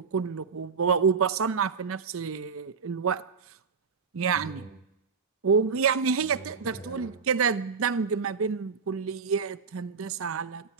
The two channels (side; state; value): left; quieter; 5.6 dB